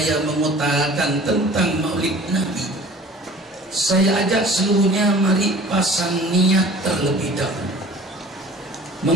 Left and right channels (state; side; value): normal; both; correlation 0.46